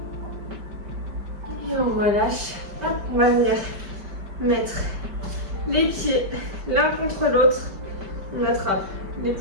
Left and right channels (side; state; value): left; late; 5.0 ms